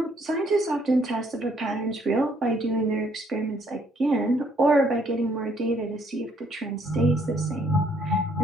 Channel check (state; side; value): normal; both; correlation 0.67